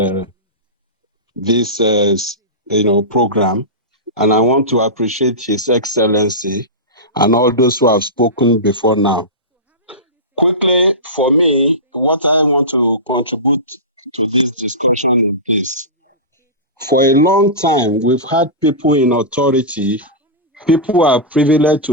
program, and I want to appreciate His Excellency and all those who have spoken before now. Quickly, for me, what I want to contribute to this discussion is, for a long time, we've had people in authority, people who are privileged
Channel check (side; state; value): both; normal; correlation -0.18